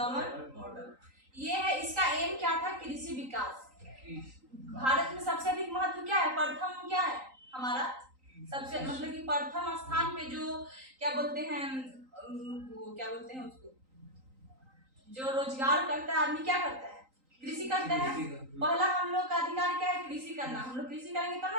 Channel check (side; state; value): left; late; 3.9 ms